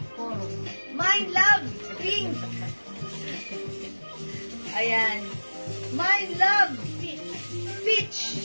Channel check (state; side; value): inverted; both; correlation -1.00